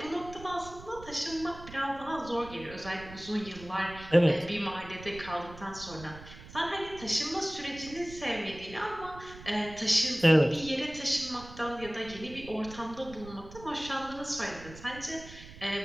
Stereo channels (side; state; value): right; noise; rumble, 16 dB below the sound